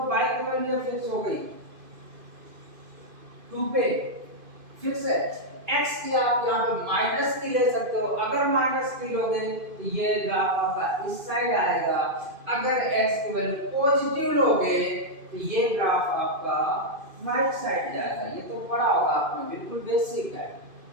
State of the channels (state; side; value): late; left; 2.5 ms